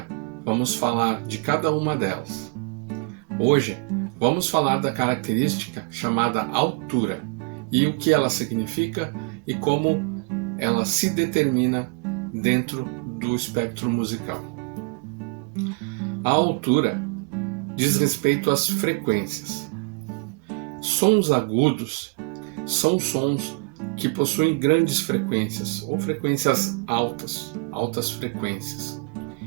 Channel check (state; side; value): quieter; left; 31.6 dB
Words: vamos falar de cada uma delas. Hoje vamos falar da característica chamada altura e o que ela significa e como ela se determina dentro do espectro musical. A altura diz respeito às frequências. Sons agudos são sons que possuem grandes frequências ou frequências altas frequências.